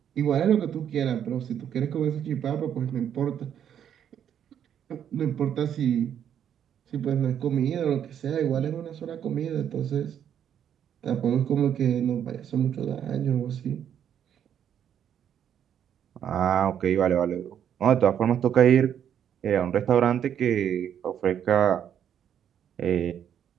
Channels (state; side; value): quieter; left; 9.2 dB